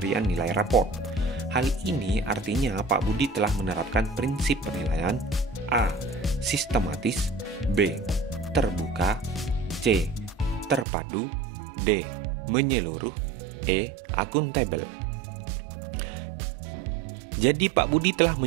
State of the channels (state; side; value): drops out; left; at 10.9 s